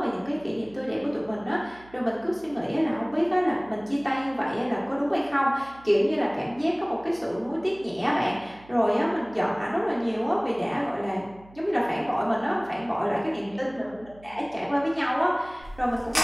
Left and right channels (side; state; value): right; noise; hum, 23 dB below the sound